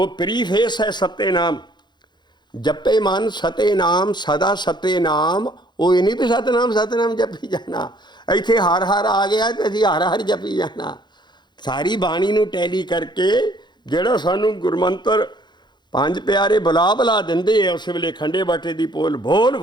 ਪ੍ਰੀਫੇਸ ਹੈ ਸੱਤੇ ਨਾਮ। ਜਪੇ ਮਨ ਸਤੇ ਨਾਮ ਸਦਾ ਸਤੇ ਨਾਮ। ਉਹ ਇਹ ਨਹੀਂ ਵੀ ਸਤਨਾਮ ਜਪੀ ਜਾਣਾ, ਇੱਥੇ ਹਰ ਹਰ ਆ ਗਿਆ ਤੇ ਅਸੀਂ ਹਰ ਹਰ ਜਪੀ ਜਾਣਾ। ਸਾਰੀ ਬਾਣੀ ਨੂੰ ਟੈਲੀ ਕਰਕੇ ਜਿਹੜਾ ਸਾਨੂੰ ਗੁਰਮੰਤਰ ਪੰਜ ਪਿਆਰੇ ਬੁਲਾ ਦਿੰਦੇ ਆ, ਉਸ ਵੇਲੇ ਖੰਡੇ ਬਾਟੇ ਦੀ ਪੋਲ ਬੋਲ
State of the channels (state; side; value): late; right; 0.21 ms